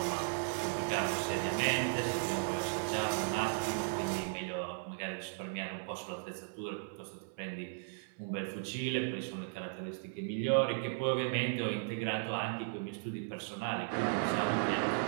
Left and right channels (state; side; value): silent; left; 54 dB below the other